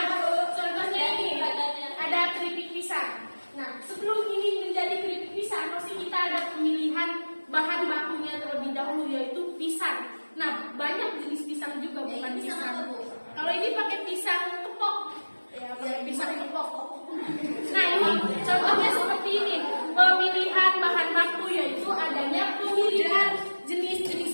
Bahan bakunya terlebih dahulu yaitu pisang. Nah, banyak jenis pisang juga, bukan pisang. Kalau ini pakai pisang kepok, ya pakai pisang kepok. Nah, ini contohnya seperti ini. Pemilihan bahan baku yaitu adanya pemilihan jenis-jenis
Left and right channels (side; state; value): both; inverted; correlation -1.00